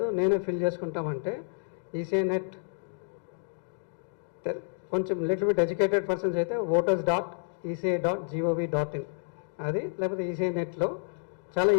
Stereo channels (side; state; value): right; silent; digital silence